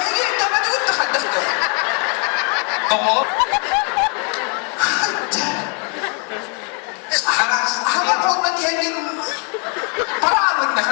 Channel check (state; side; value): quieter; right; 38.0 dB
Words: nama juga terhadas tuh. Tolong. Hanga kau tadi hanya parah nak